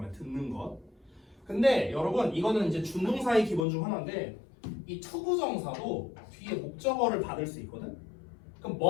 듣는 것. 근데 여러분 이거는 이제 준동사의 기본 중 하나인데 이 투부정사도 뒤에 목적어를 받을 수 있거든. 그럼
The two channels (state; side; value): drops out; right; at 3.7 s